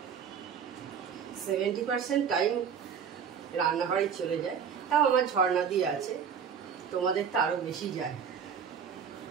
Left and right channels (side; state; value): left; quieter; 7.2 dB